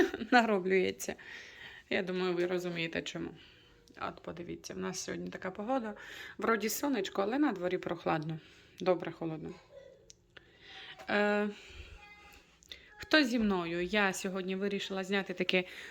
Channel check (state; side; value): identical; both; correlation 1.00